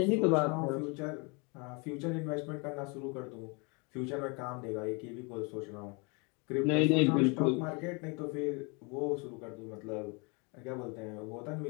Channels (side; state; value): right; quieter; 31.1 dB